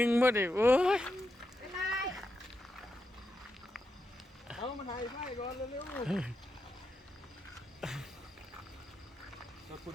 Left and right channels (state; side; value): normal; both; correlation 0.86